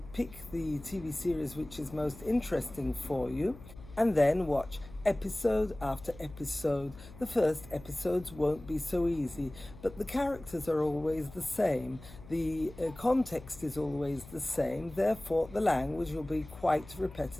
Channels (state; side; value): noise; left; hum, 17 dB below the sound